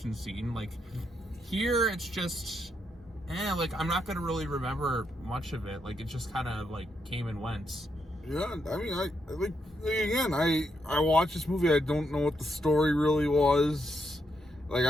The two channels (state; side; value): normal; both; correlation 0.80